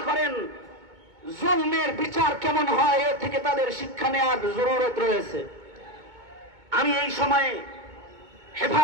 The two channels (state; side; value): late; left; 2.2 ms